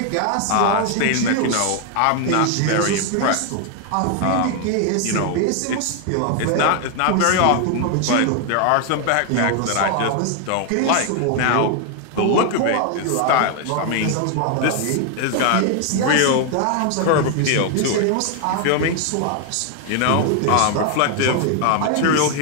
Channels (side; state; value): both; different; correlation 0.00